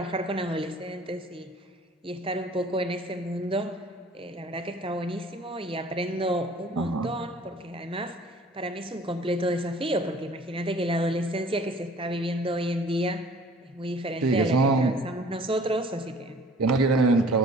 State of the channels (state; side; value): normal; both; correlation 0.51